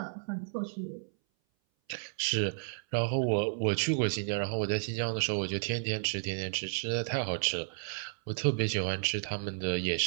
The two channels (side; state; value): left; silent; 56 dB below the other